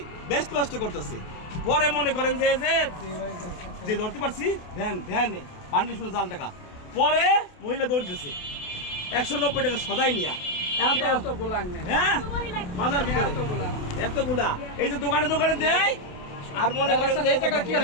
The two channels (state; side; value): late; right; 28 ms